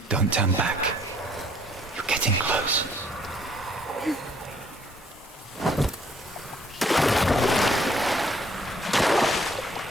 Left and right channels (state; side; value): normal; both; correlation 0.63